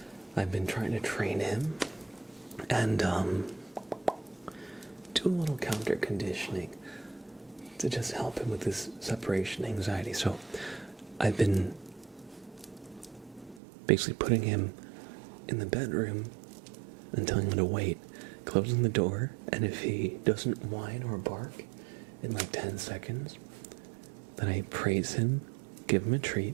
I've been trying to train him and do a little counter conditioning to just help him with this separation anxiety. So I've been basically putting him in the bedroom and telling him to wait, closing the door, and if he doesn't whine or bark in like 10 seconds, then I praise him, give him a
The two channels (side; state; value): left; drops out; at 13.6 s